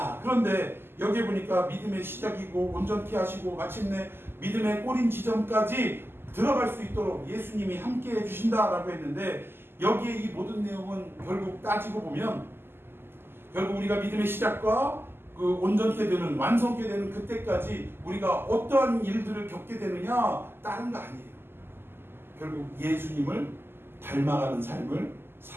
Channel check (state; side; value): late; left; 0.11 ms